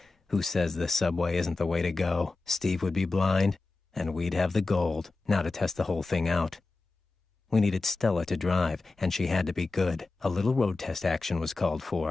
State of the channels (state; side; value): quieter; right; 3.6 dB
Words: Who says the subway isn't the way to go? Steve would be blind, and we'd have the gold. Now to test the whole thing out. We needed Stella to drive, and she had to be good. A little road test action was called